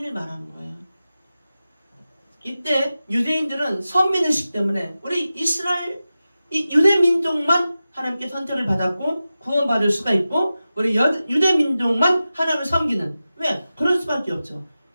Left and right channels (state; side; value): inverted; both; correlation -0.94